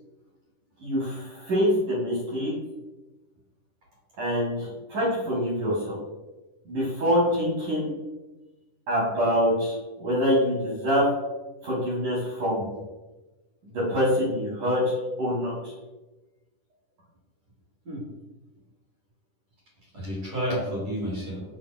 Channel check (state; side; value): late; left; 10 ms